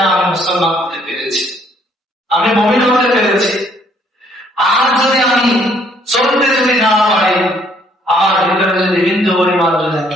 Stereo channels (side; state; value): both; normal; correlation 0.64